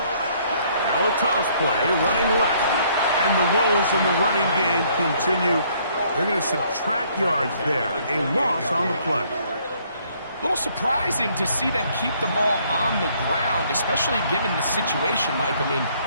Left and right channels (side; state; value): both; inverted; correlation -0.64